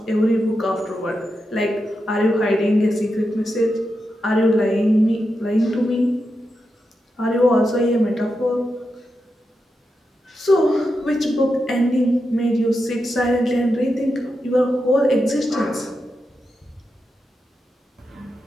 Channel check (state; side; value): normal; both; correlation 0.88